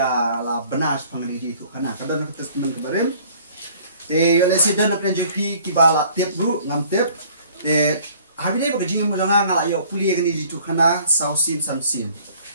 la benas pangan kaji tu khana kadan ka testament kabarim yo lesiden PNJP kibala tip bru ngam tip hari dai kaji mo ngala yo puli kaji tu khana sausim samsim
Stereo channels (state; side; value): inverted; both; correlation -0.55